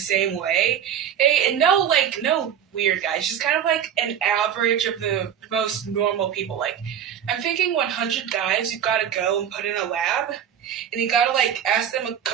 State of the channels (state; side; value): quieter; left; 9.1 dB